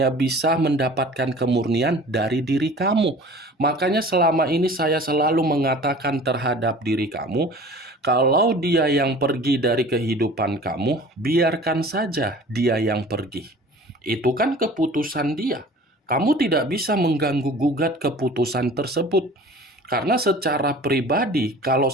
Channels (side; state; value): both; normal; correlation 0.44